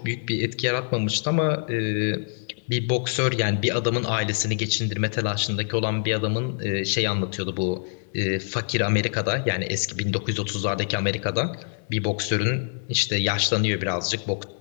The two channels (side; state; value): right; silent; digital silence